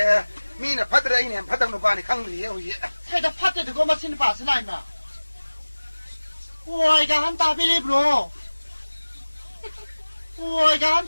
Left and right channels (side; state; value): both; inverted; correlation -1.00